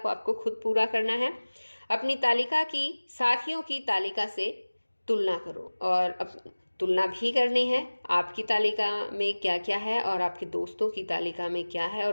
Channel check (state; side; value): inverted; both; correlation -1.00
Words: आपको खुद पूरा करना है। अपनी तालिका की साथियों की तालिका से तुलना करो और तुलना भी करनी है, आपकी तालिका में क्या क्या है और आपके दोस्तों की तालिका में क्या है